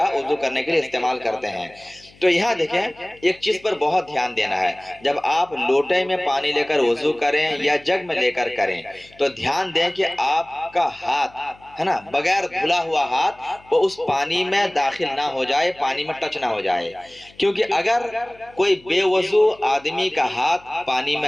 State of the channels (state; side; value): noise; left; hum, 27 dB below the sound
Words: وضو کرنے کے لیے استعمال کرتے ہیں۔ تو یہاں دیکھیں ایک چیز پر بہت دھیان دینا ہے، جب آپ لوٹے میں پانی لے کر وضو کریں یا جگ میں لے کر کریں تو دھیان دیں کہ آپ کا ہاتھ ہے نا بغیر دھلا ہوا ہاتھ وہ اس پانی میں داخل نہ ہو جائے، پانی میں ٹچ نہ ہو جائے، کیونکہ اگر کوئی بے وضو آدمی کا ہاتھ پانی